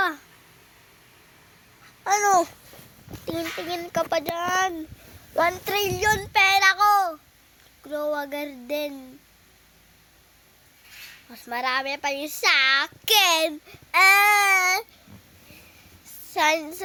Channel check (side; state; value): both; identical; correlation 1.00